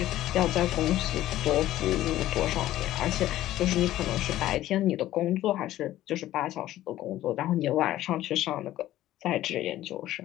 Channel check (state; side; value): quieter; right; 14.3 dB